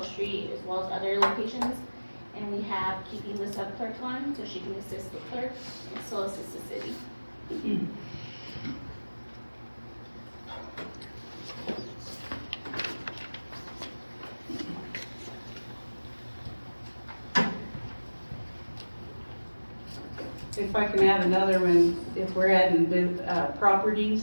Street as well as other locations. And we have keeping the sub-clerk on so she can assist the clerk and still assist the city. If I can add another one, if we're adding properties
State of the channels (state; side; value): inverted; both; correlation -1.00